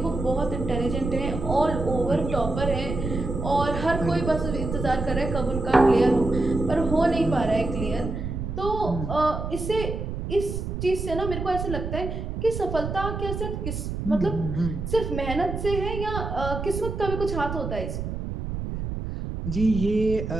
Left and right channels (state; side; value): noise; right; rumble, 5 dB below the sound